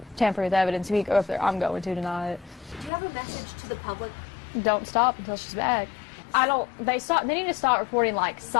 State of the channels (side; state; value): right; drops out; at 2.9 s